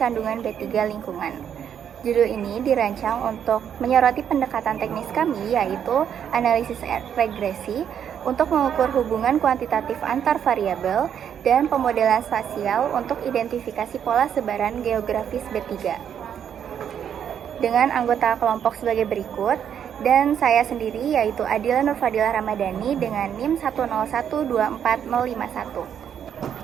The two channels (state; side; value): quieter; left; 8.7 dB